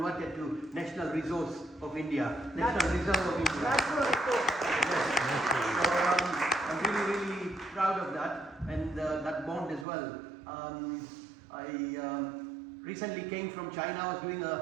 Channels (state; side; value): drops out; left; at 9.9 s